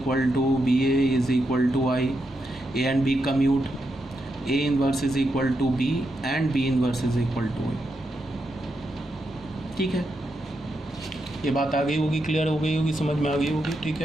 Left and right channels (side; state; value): both; normal; correlation 0.84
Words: to B A is equal to I, A and B commute, A inverse is equal to B and B inverse is equal to I. ठीक है, ये बात आ गई होगी, क्लियर हो गई होगी, समझ में आ गई होगी। ठीक